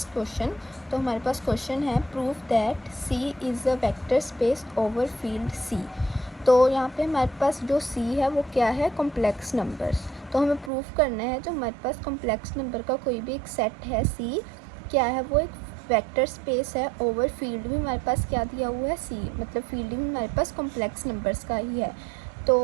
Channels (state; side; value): drops out; left; at 10.7 s